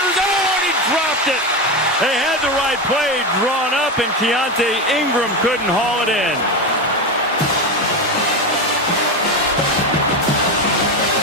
zone. He dropped it. They had the right play drawn up, and Keontae Ingram couldn't haul it in.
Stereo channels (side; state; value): both; normal; correlation 0.16